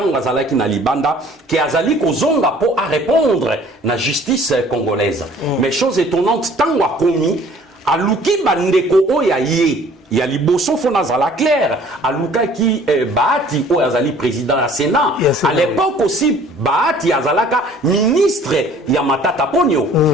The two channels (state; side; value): normal; both; correlation 0.53